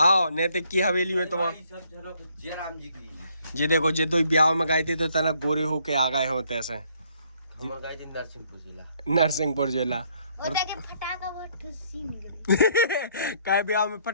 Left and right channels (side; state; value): both; inverted; correlation -0.67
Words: नैतिक की हवेली में तुम जे देखो जे दो ब्याह में गए थे तो तना गोरे होके आ गए होते ऐसे नरसिंहपुर जिला। और के फटाका बहुत ठुसी निकली काय ब्याह में